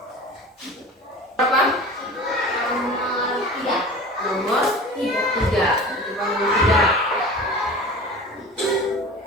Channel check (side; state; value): both; normal; correlation 0.37